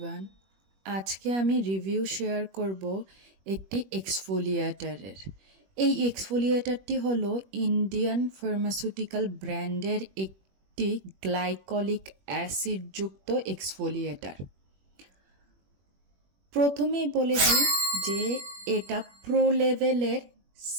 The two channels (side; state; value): left; late; 21 ms